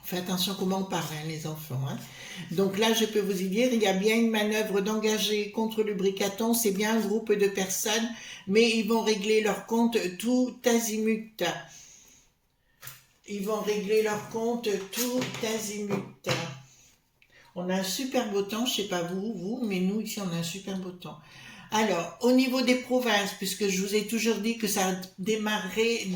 Faites attention comment on parle, hein, les enfants. Hein. Donc là, je peux vous y dire, il y a bien une manœuvre d'engager contre le Bricaton, c'est bien un groupe de personnes, mais ils vont régler leur compte tout azimut. Ils vont régler leur compte tout azimut. On a un super beau temps, je sais pas vous, mais nous ici on a un super beau temps. Alors, au niveau des provinces, puisque je vous ai toujours dit que ça démarrait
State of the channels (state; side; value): identical; both; correlation 1.00